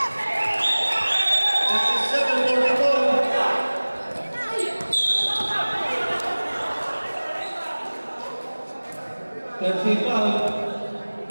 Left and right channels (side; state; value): both; inverted; correlation -1.00